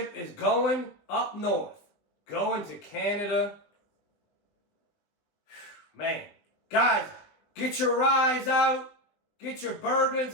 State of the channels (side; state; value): right; late; 20 ms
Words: is going up north. Going to Canada. Man. Guys, get your ryes out. Get your